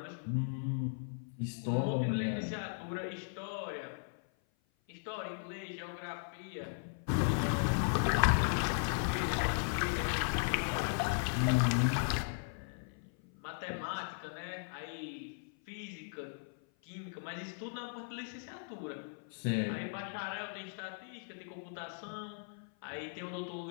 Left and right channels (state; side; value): silent; right; 53 dB below the other